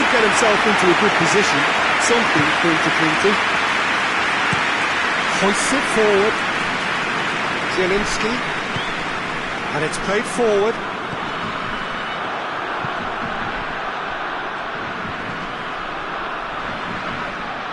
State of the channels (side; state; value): both; identical; correlation 1.00